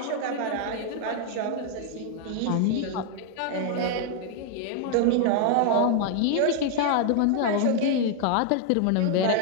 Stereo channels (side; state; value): both; different; correlation 0.00